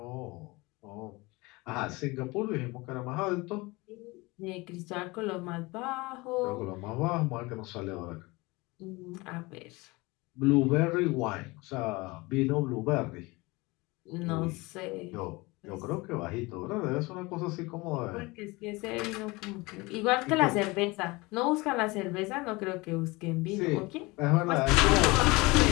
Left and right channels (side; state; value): right; quieter; 23.7 dB